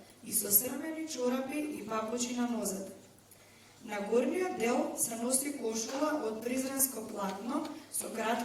и со срмени чорапи и папучи на нозете. На горниот дел се носи кошула од призренско платно со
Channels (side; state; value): both; identical; correlation 1.00